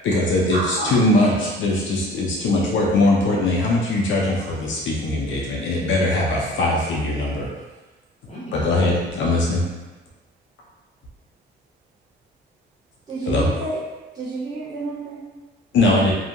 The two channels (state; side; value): normal; both; correlation 0.48